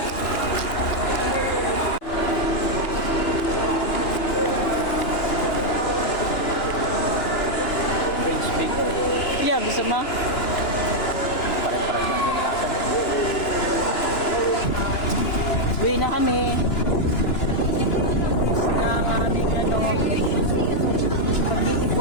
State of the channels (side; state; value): right; late; 2.9 ms